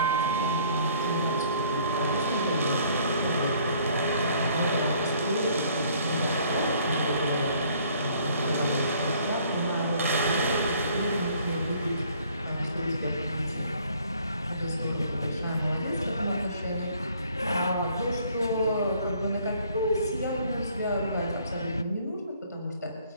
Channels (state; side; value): inverted; both; correlation -0.60